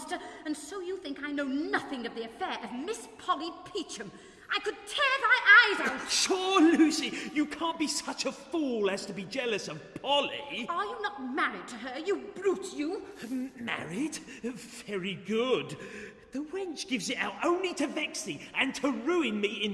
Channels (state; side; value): identical; both; correlation 1.00